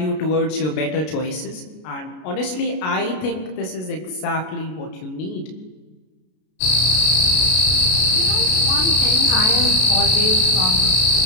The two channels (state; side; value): late; right; 33 ms